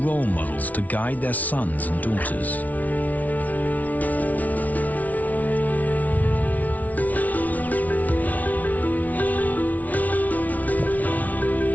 models to guide their sons and daughters.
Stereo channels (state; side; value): late; right; 0.073 ms